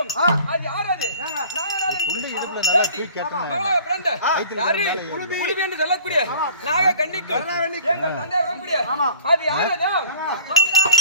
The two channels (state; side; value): inverted; both; correlation -0.47